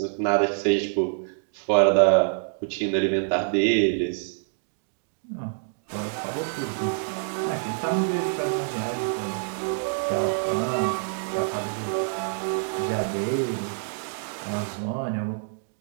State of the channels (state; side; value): silent; left; digital silence